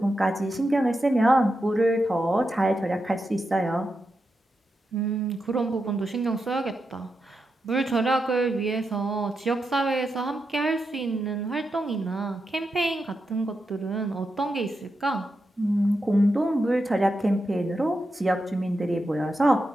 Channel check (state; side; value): normal; both; correlation 0.87